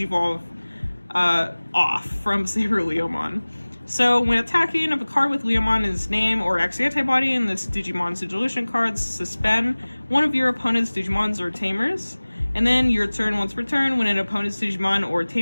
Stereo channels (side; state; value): both; inverted; correlation -1.00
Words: off from Saber Leomon. So when attacking, if a card with Leomon in its name or X antibody in this Digimon's deletion cards, suspend one of your opponent's Digimons or Tamers. And then your turn, once per turn, when an opponent's Digimon or